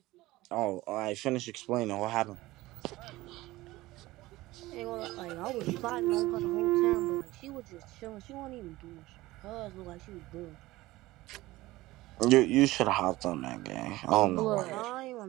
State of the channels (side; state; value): left; quieter; 18.4 dB